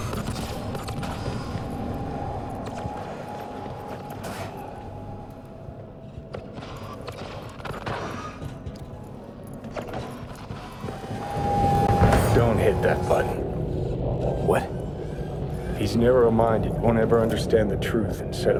Don't hit that button. What? He's narrow-minded, won't ever understand the truth and set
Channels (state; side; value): identical; both; correlation 1.00